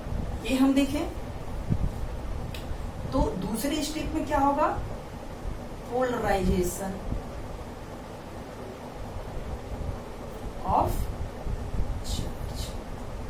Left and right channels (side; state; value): both; identical; correlation 1.00